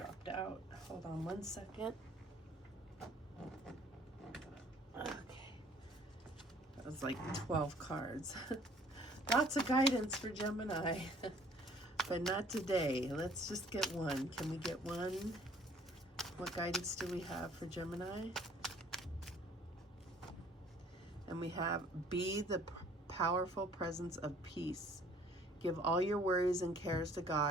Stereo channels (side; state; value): both; normal; correlation 0.56